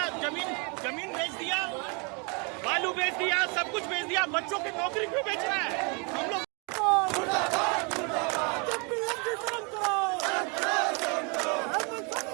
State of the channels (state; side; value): quieter; left; 33.2 dB